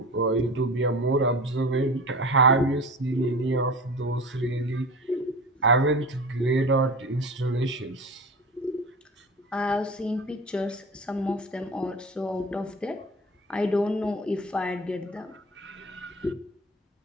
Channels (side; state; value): both; normal; correlation 0.33